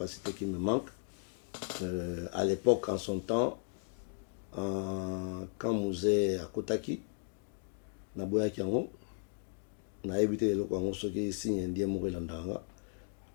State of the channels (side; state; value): right; silent; digital silence